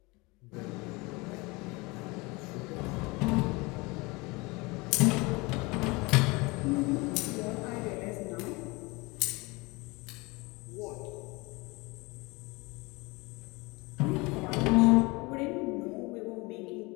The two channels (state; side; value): quieter; right; 25.1 dB